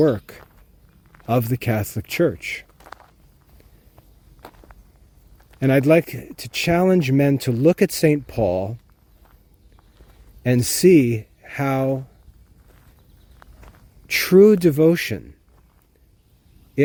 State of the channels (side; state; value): both; identical; correlation 1.00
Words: of the Catholic Church. And I'd like to challenge men to look at St. Paul and see how true devotion